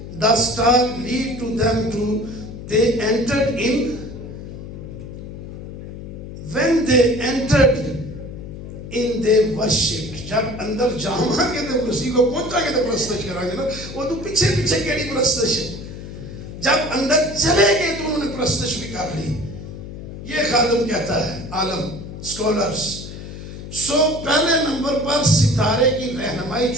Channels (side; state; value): left; noise; hum, 11 dB below the sound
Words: the star lead to them to they entered in when they entered in they worshiped جب اندر جاؤں گے تو مسیح کو پہنچا کے تو پرستش کریں گے نا وہ تو پیچھے پیچھے کیڑی پرستش ہے جب اندر چلے گئے تو انہوں نے پرستش بھی کر لی یہ خادم کہتا ہے عالم سکولرز سو پہلے نمبر پر ستارے کی رہنمائی